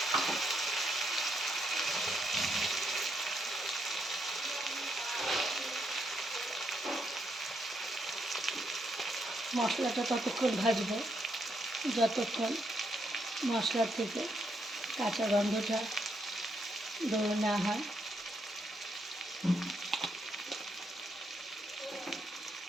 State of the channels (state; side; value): normal; both; correlation 0.78